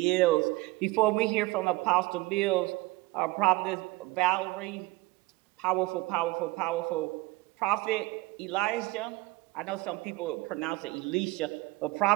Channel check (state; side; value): quieter; left; 20.3 dB